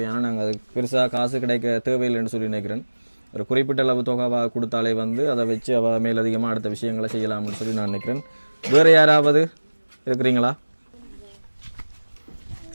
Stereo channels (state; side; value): inverted; both; correlation -1.00